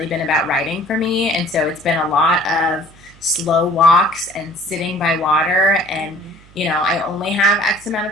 been about writing for me, and so it's been a lot of slow walks and sitting by water, and I only have X amount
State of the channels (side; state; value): right; noise; hum, 25 dB below the sound